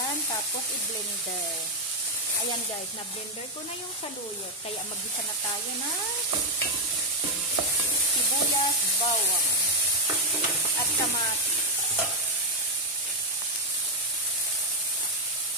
tapos i-blender. Ayan guys, na-blender ko na yung saluyot. Kaya mag-isa na tayo na sibuyas, bawang, at kamatis.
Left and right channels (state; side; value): normal; both; correlation 0.01